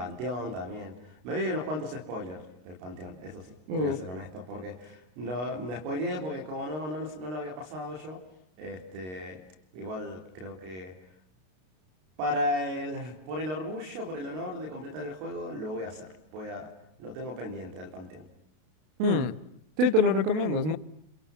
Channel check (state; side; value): late; left; 32 ms